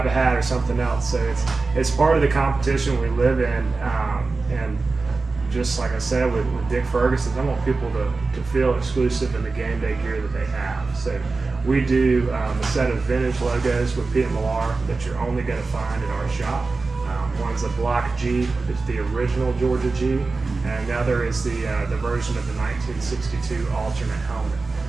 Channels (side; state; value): left; quieter; 3.8 dB